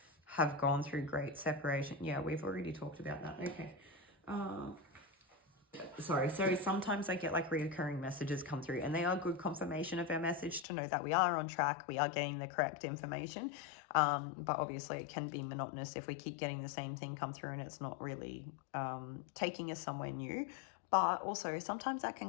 have gone through great separation. Yeah, we've already talked about that. Okay. Sorry. So sometimes I get like reoccurring messages come through, and they are good confirmation of our message to know that we are on track, we are getting the correct information. But obviously it can be monotonous if we keep getting the same thing come through and it's not really taking us somewhere new. But also sometimes that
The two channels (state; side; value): drops out; right; at 10.7 s